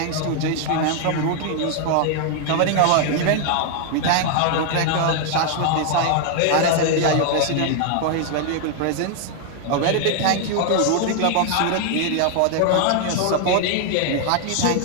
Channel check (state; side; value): different; both; correlation 0.00